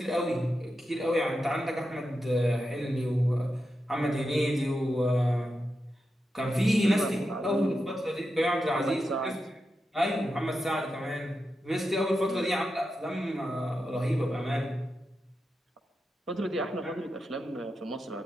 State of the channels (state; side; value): normal; both; correlation 0.89